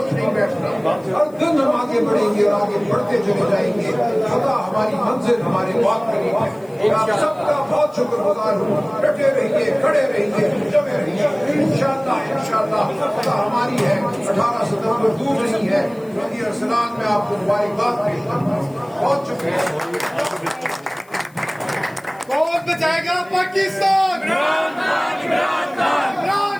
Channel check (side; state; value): left; noise; hiss, 29 dB below the sound